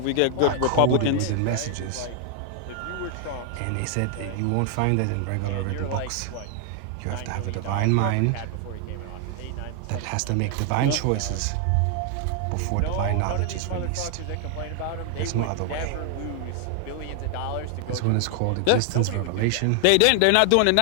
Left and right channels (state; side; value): different; both; correlation 0.00